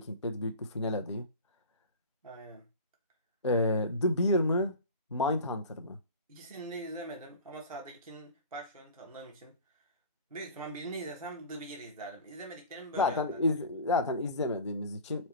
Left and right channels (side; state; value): both; inverted; correlation -0.37